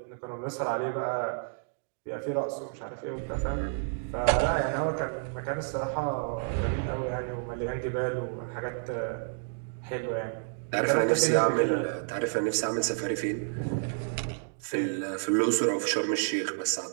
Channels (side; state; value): left; silent; digital silence